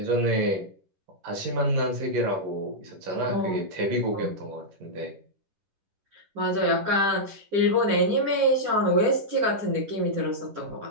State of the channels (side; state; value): left; late; 10 ms